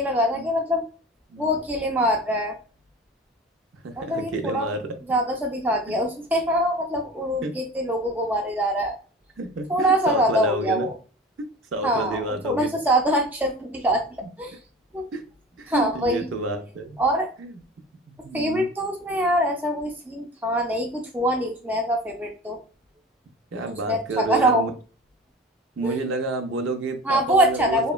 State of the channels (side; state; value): both; normal; correlation 0.37